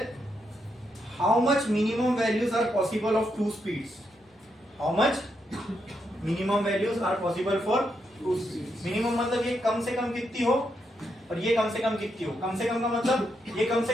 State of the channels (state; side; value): normal; both; correlation 0.81